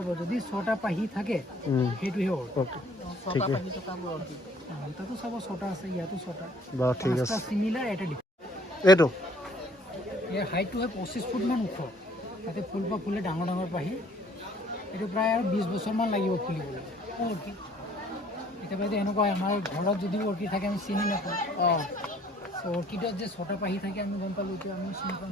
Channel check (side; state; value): both; normal; correlation 0.58